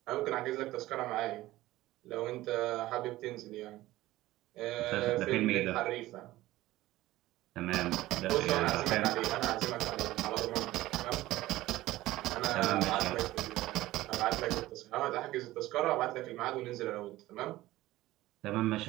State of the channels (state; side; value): quieter; left; 16.7 dB